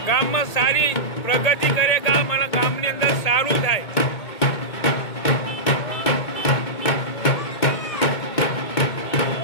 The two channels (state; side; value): late; right; 1.8 ms